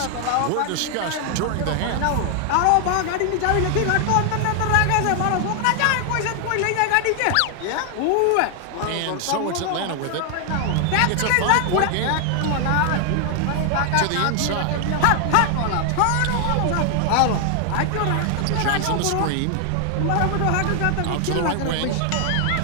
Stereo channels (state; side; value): different; both; correlation 0.00